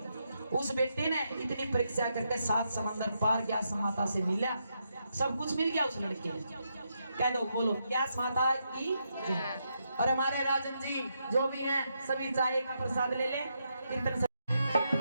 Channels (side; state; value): both; inverted; correlation -0.81